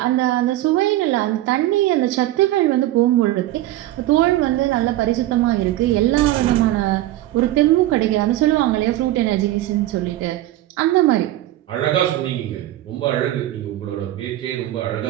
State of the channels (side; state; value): left; quieter; 15.0 dB